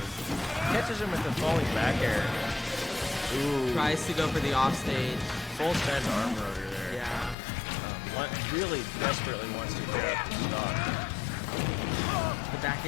Catches him with the falling back air. Ooh. tries to go for the offstage. Full send arm rotor there. Yeah. Really desperately wants to clear out the stock. The back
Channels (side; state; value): right; drops out; at 7.4 s